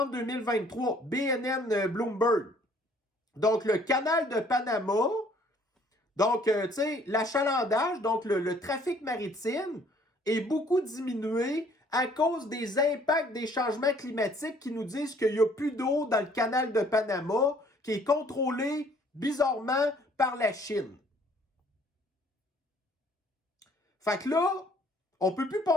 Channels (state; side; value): normal; both; correlation 0.59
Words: 2023, BNN Bloomberg. Donc, le canal de Panama. Donc, tu sais, l'achalandage, donc le trafic maritime est beaucoup diminué à cause des impacts des changements climatiques qui nous disent qu'il n'y a plus d'eau dans le canal de Panama qui est contrôlé bizarrement par la Chine. Fait que là, on ne peut plus